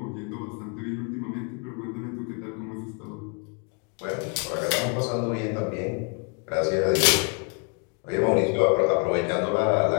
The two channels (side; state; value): right; quieter; 35.7 dB